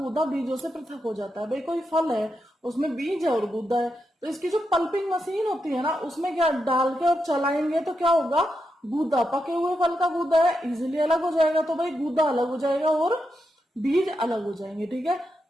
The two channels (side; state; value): both; normal; correlation 0.85